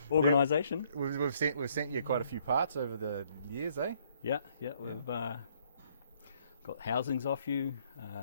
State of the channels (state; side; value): inverted; both; correlation -0.66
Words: Organisation. We've sent you quite a few parts over the years, eh? Yeah. We've got housings off you,